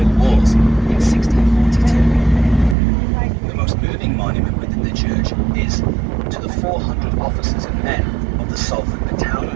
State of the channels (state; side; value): drops out; left; at 2.8 s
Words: Wars in 1642. The most moving monument within the church is to the 400 officers and men of the Salford